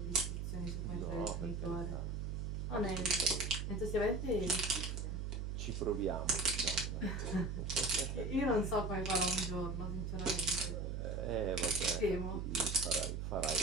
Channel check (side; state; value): right; noise; hum, 3 dB below the sound